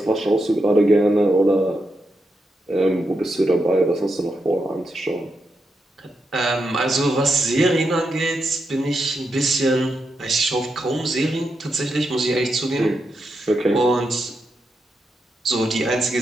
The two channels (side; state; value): both; normal; correlation 0.85